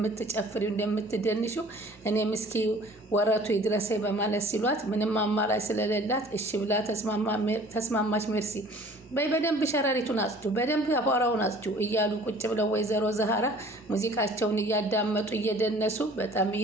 እንደምትደንሺው እኔ ምስኪ ወረቱ ይድረሰኝ በማለት ሲሏት ምንም አማራጭ ስለሌላት እሺ ብላ ተስማማች። ሜርሲ በይ በደንብ ሸረሪቱን አጽዱ፣ በደንብ አቧራውን አጽዱ እያሉ ቁጭ ብለው ወይዘሮ ዛሃራ ሙዚቃቸውን እያዳመጡ እየደነሱ በጣም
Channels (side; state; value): both; normal; correlation 0.50